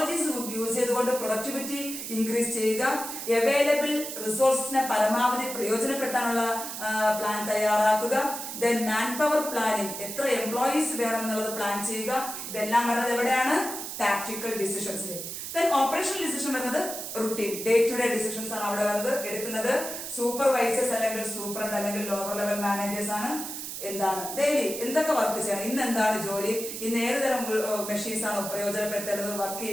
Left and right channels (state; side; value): noise; right; hiss, 7 dB below the sound